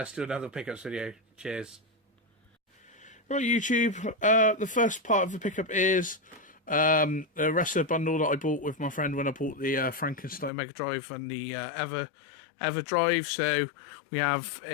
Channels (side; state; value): right; drops out; at 10.5 s